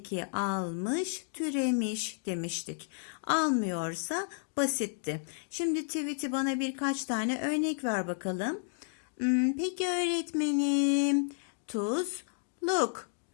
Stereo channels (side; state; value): right; silent; digital silence